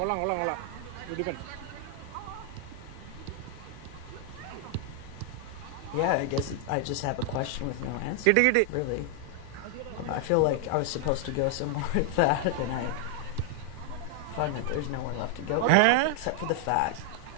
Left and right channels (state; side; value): different; both; correlation 0.00